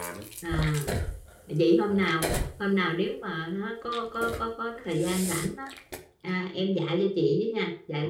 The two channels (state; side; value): identical; both; correlation 1.00